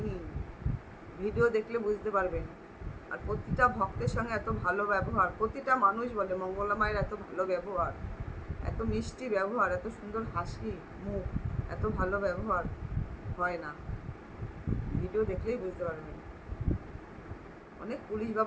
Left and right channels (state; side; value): identical; both; correlation 1.00